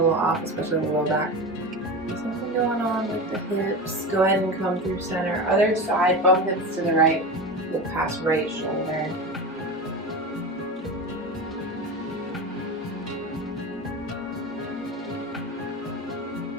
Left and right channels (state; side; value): normal; both; correlation 0.25